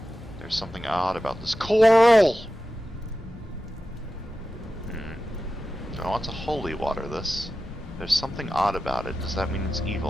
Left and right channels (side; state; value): both; normal; correlation 0.93